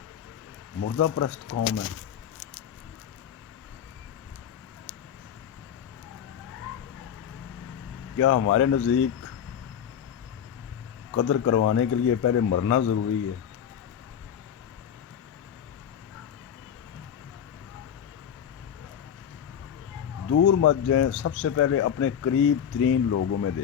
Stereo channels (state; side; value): quieter; right; 8.8 dB